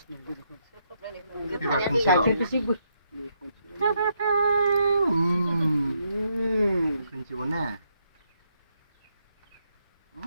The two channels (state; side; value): inverted; both; correlation -0.77